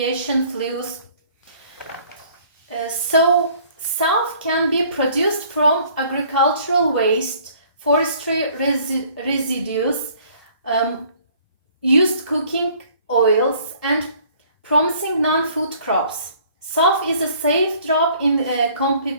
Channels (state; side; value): inverted; both; correlation -0.56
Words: fuels. So, SAF can be produced from agricultural waste, forestry residues, used cooking oils, and promising non-food crops. SAF is a safe drop in